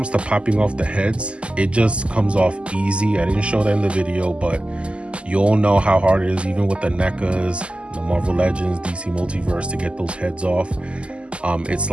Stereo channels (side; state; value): left; late; 0.054 ms